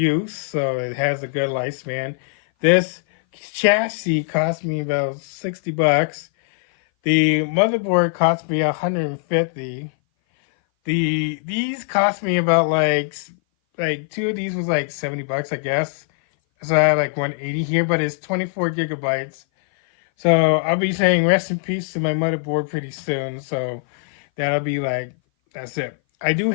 So it has a good lifespan. This chassis cost me about $60. The motherboard cost me $150. These cost me about like two of these was like $70, I guess. So I have like 180 here, but it's 24 gigabytes. So I'll be saying rest in peace to my motherboard pretty soon. So that'll be like, that's it. I do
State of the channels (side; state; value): right; silent; 59 dB below the other